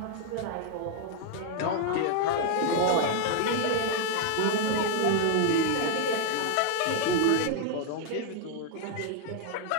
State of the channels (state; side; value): different; both; correlation 0.00